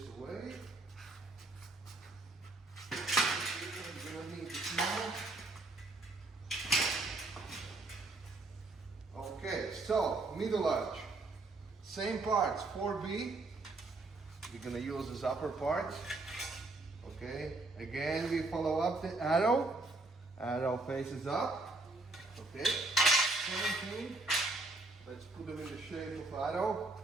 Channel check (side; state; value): left; quieter; 3.1 dB